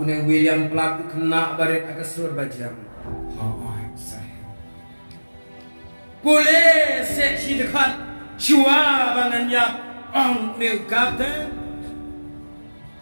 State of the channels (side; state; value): both; inverted; correlation -1.00